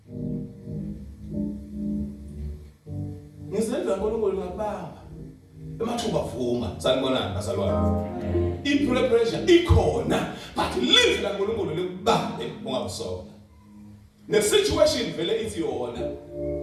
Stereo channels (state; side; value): identical; both; correlation 1.00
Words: ngizenza ngoNkulunkulu ngakubamba emathuba vuma sanibonani bazalwane i-preparation ikhona but live la ngoNkulunkulu likubambe ungabusona ne-situation vele ithi yona